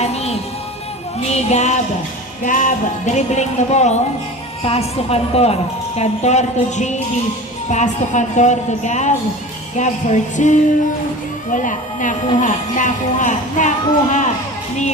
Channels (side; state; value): both; normal; correlation 0.35